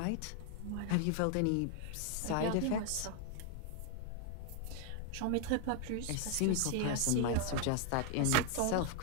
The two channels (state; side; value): different; both; correlation 0.00